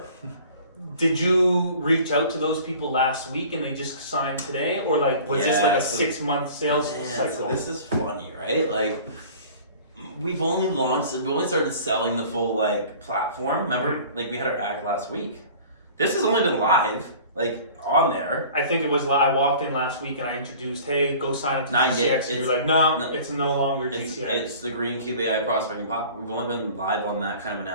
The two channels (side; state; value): both; inverted; correlation -0.45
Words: Did you reach out to those people last week and they just signed today, or like was this like a 6-month sales cycle? So this is funny, right? Like we only started selling the full like platform. Remember, like we had our act last week. This has only been live, like on there. I think it was. I walked in last week and I introduced, "Hey, go sign up to 9 GCX." days. And you're like, "No, it's no longer GCX." It's the GreenCube AI prospecting platform. We've only been live on that kind of